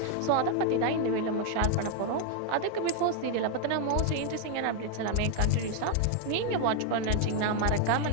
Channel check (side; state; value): both; different; correlation 0.00